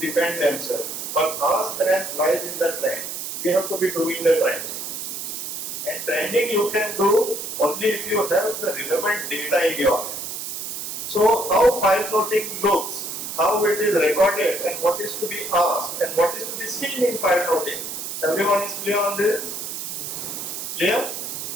themselves. But our strength lies in the trend. We have to be doing the trending. And trending you can do only if you have the relevant data in your hand. So how file noting looks, how it is recorded and what is to be asked and what is to be seen in file noting. Everyone is clear on this? Clear?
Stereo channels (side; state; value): right; noise; hiss, 6 dB below the sound